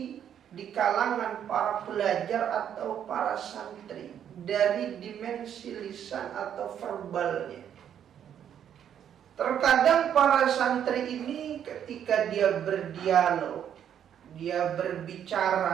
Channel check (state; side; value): quieter; left; 9.3 dB